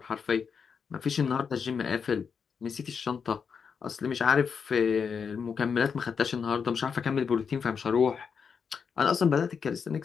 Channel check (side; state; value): right; quieter; 6.3 dB